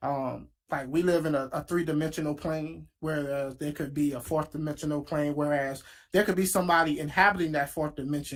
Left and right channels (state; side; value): identical; both; correlation 1.00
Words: Like we live in a 3-dimensional plane, whereas there could be a 4th-dimensional plane, whereas there could be somebody inhabiting that 4th